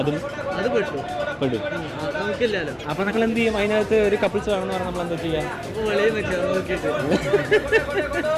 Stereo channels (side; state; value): both; identical; correlation 1.00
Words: പെടും. അപ്പൊ നമ്മൾ എന്ത് ചെയ്യും? അതിനകത്ത് ഒരു കപ്പിൾസ് വേണമെന്ന് പറഞ്ഞാൽ നമ്മൾ എന്താ ചെയ്യാം?